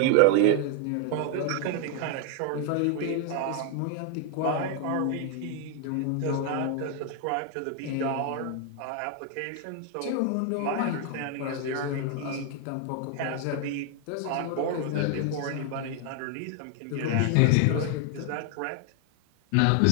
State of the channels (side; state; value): both; different; correlation 0.00